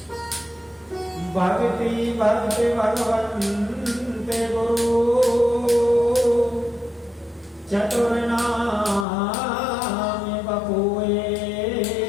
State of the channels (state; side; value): drops out; right; at 9.1 s